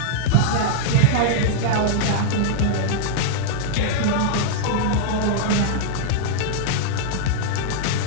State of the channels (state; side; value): different; both; correlation -0.01